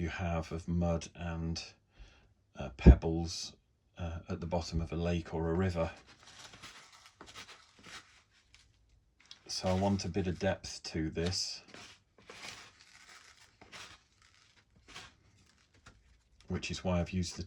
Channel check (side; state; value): both; identical; correlation 1.00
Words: have of mud and pebbles at the bottom of a lake or a river. So I want a bit of depth to this, which is why I've used the